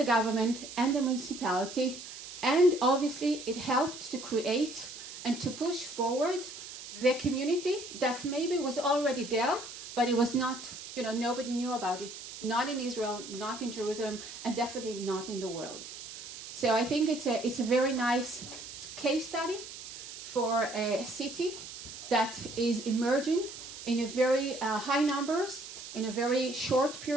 government and the municipality, and obviously it helped to create and to push forward the community that maybe was already there, but it was not, nobody knew about it. Not in Israel, not in Jerusalem, and definitely not in the world. So I think it's a very nice case study for a city that is emerging in a very high numbers in a very short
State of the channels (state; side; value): noise; right; hiss, 12 dB below the sound